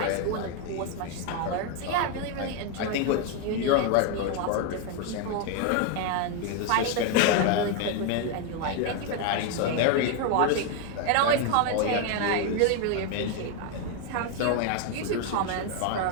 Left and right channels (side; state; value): both; different; correlation 0.01